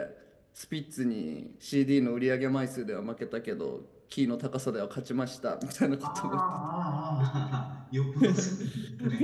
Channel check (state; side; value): identical; both; correlation 1.00